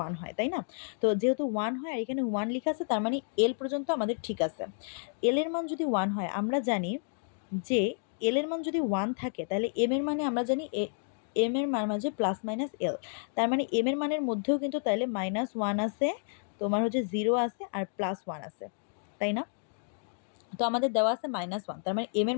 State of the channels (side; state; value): right; silent; digital silence